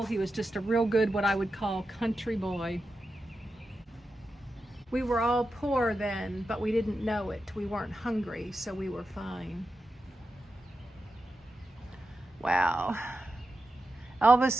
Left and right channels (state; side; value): normal; both; correlation 0.89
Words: He was just a real good, what I would call, country boy. We were all poor then, but we didn't know it. We weren't hungry, so we were fine. Wow.